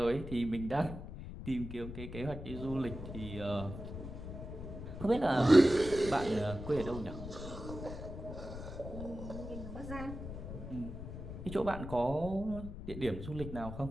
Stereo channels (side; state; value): left; noise; rumble, 9 dB below the sound